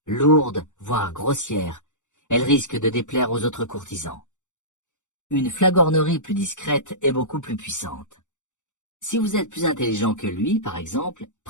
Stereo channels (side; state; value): right; late; 0.85 ms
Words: Lourde, voire grossière, elle risque de déplaire aux autres courtisans. Une flagornerie plus discrète est beaucoup plus puissante. Si vous êtes plus intelligent que lui, par exemple,